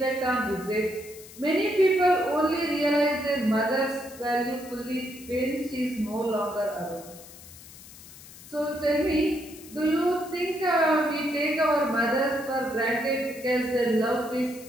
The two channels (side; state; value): left; noise; hiss, 18 dB below the sound